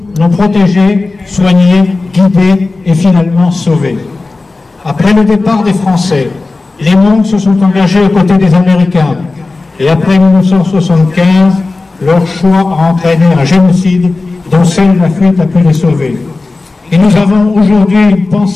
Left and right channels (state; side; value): quieter; right; 3.5 dB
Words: l'ont protégé, soigné, guidé et finalement sauvé. Après le départ des Français, les Hmong se sont engagés aux côtés des Américains et après 1975, leur choix a entraîné un génocide dont seule la fuite a pu les sauver. Et nous avons aujourd'hui une